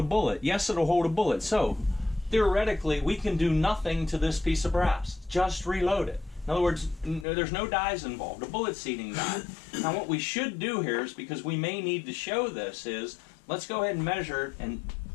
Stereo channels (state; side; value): drops out; right; at 7.2 s